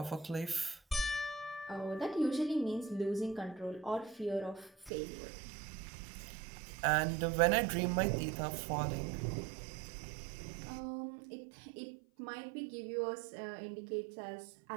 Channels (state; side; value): drops out; left; at 4.9 s